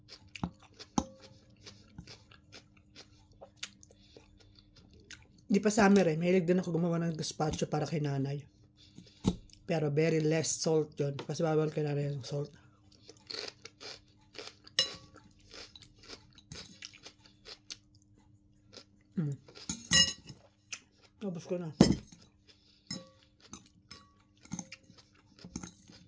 Di pa summer eh. Mahilig din ako gumawa ng gazpacho para kay nanay. Pero very less salt yun. Kasi bawal kay nanay yung salt. Tapos ko na.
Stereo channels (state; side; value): identical; both; correlation 1.00